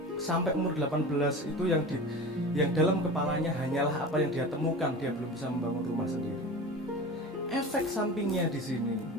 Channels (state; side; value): normal; both; correlation 0.33